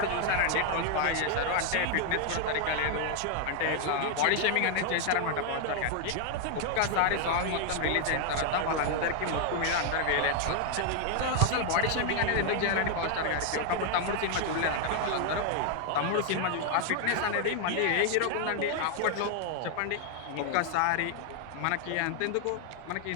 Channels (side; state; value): both; different; correlation 0.00